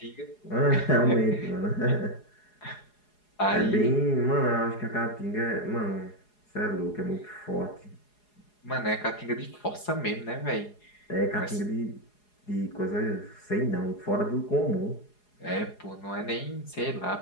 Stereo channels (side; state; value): right; late; 4.8 ms